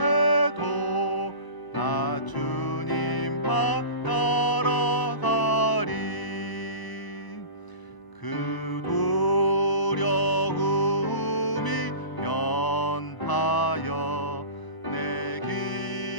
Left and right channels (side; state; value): right; late; 1.0 ms